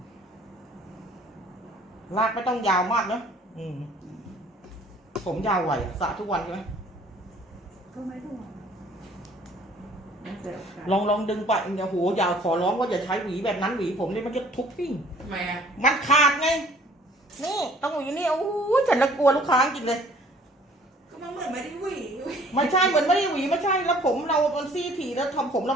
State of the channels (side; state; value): both; normal; correlation 0.55